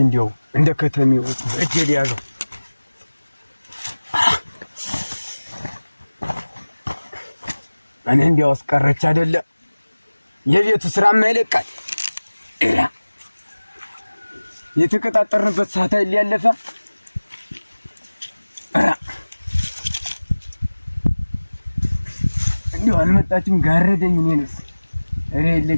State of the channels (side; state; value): both; inverted; correlation -1.00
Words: እንዲያው እንደ ከተሜው በእጄ ያዘው እኔ እንዲያው አስቀረች አይደለ የቤቱ ስራ ማይለቃል የተቀጣጠርንበት ሰዓት ያለፈ እንዲያው አልመጣችም ጋረደኝ እኔንስ እሬ